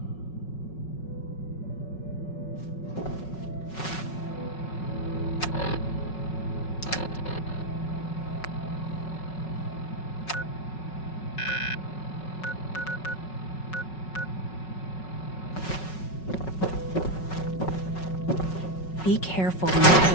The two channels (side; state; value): right; late; 5.4 ms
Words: Be careful when you head